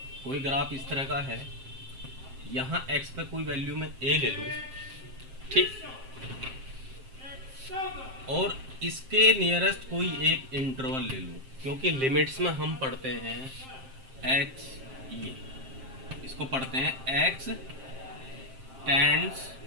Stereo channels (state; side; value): late; left; 7.6 ms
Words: कोई ग्राफ इस तरह का है, यहाँ x पे कोई वैल्यू में a ले लूँ, ठीक, और इसके नियरेस्ट कोई एक इंटरवल ले लूँ, क्योंकि लिमिट्स में हम पढ़ते हैं x, ये इसको पढ़ते हैं x टेंड्स